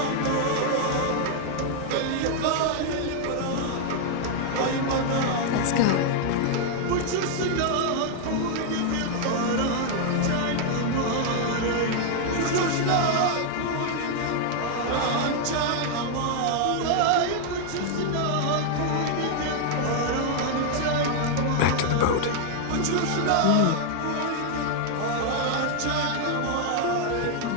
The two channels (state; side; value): different; both; correlation 0.00